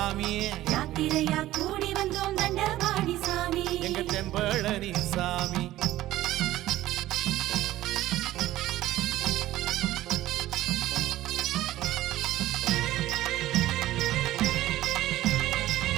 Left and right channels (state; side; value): quieter; left; 15.2 dB